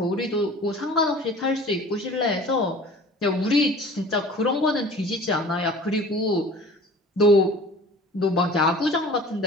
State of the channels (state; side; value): normal; both; correlation 0.44